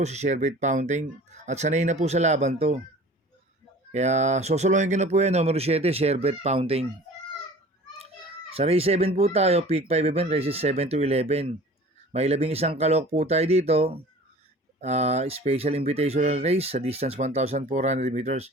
si Sherbet Fountain. At sanay na po sa laban to. Kaya, sosolohin ko na po yan, numero 7, Sherbet Fountain. Sa race 7 po tayo, pick 5 event, races 7 to 11. May 11 kalok po tayo dito. Special invitational race sa distance 1,400 meters.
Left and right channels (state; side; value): normal; both; correlation 0.44